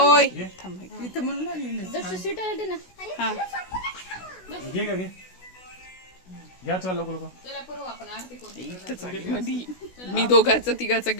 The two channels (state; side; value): late; right; 16 ms